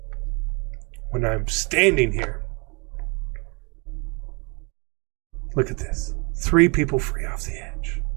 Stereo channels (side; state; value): left; quieter; 31.1 dB